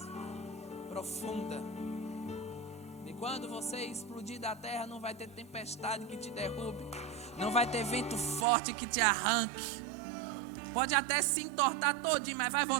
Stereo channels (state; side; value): drops out; left; at 8.5 s